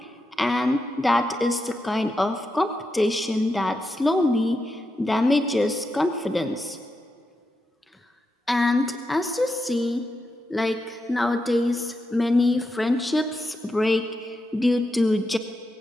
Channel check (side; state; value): both; normal; correlation 0.86